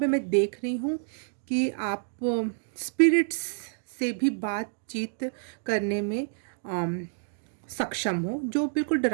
मैं देख रही हूँ कि आप स्पिरिट्स से भी बातचीत करने में सक्षम हो, जो बिल्कुल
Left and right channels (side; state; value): left; silent; digital silence